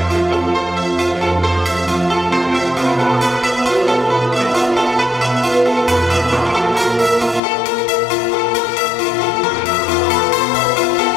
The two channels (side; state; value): right; drops out; at 7.4 s